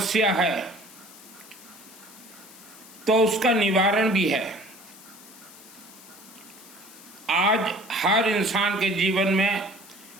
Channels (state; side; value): noise; left; hiss, 20 dB below the sound